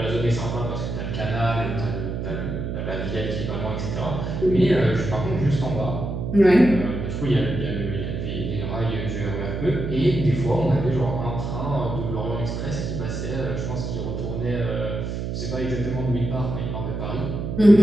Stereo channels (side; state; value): right; noise; hum, 4 dB below the sound